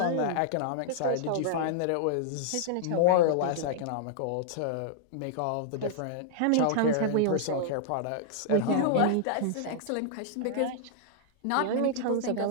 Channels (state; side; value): different; both; correlation -0.01